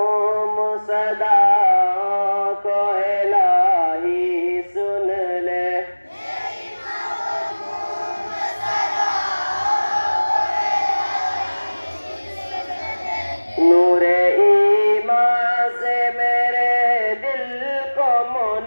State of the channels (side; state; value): both; inverted; correlation -1.00